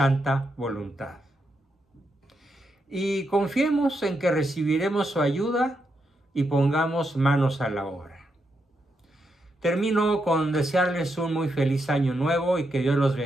voluntad. Y confiemos en que recibiremos su ayuda y pongamos manos a la obra. Termino con desearles un muy feliz año nuevo y que Dios los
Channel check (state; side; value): normal; both; correlation 0.82